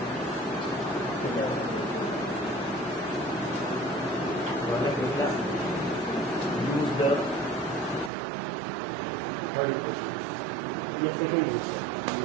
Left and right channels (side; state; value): left; drops out; at 8.1 s